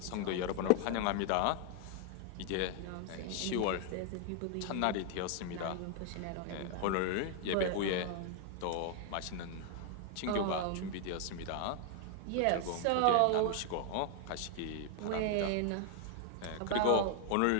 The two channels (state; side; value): different; both; correlation 0.00